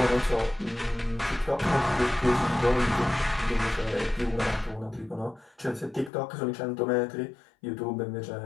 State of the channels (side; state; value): right; drops out; at 6.1 s